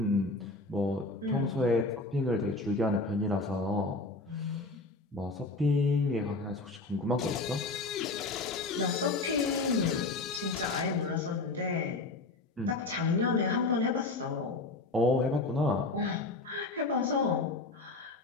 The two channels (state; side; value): quieter; right; 3.3 dB